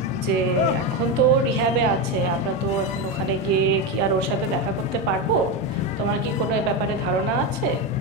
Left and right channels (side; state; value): both; normal; correlation 0.13